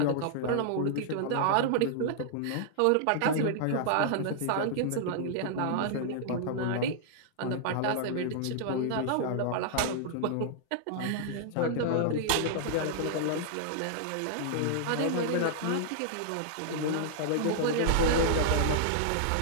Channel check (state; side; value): different; both; correlation -0.01